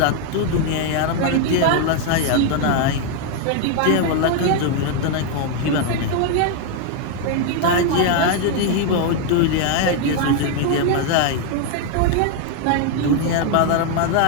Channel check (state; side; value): different; both; correlation 0.00